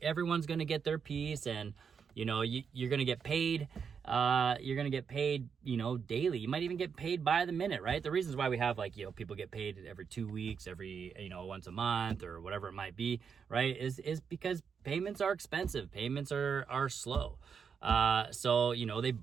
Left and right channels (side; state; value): left; quieter; 6.5 dB